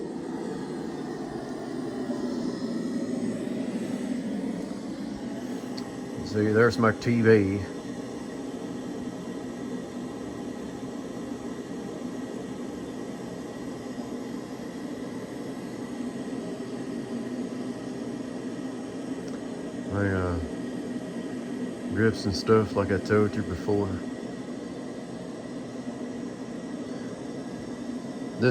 See, there's my TV. My grips and stuff, like I told you before.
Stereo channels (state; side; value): identical; both; correlation 1.00